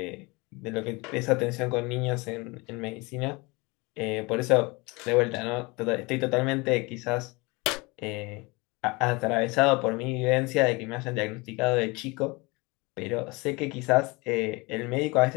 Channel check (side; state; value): right; quieter; 25.7 dB